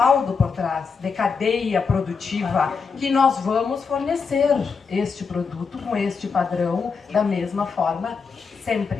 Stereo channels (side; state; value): right; quieter; 5.4 dB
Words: por trás de cadeia produtiva que nós vamos fornecer este produto com este padrão da mesma forma